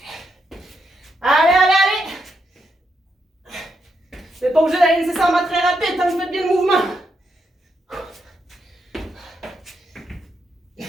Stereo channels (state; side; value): normal; both; correlation 0.81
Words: Allez. Vous n'êtes pas obligé d'aller nécessairement très rapide tant que vous faites bien le mouvement.